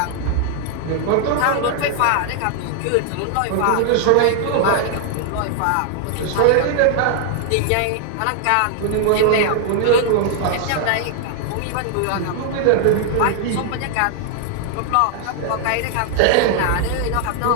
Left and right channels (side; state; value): both; different; correlation 0.00